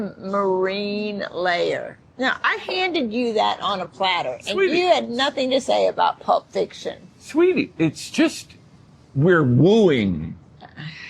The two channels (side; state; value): both; identical; correlation 1.00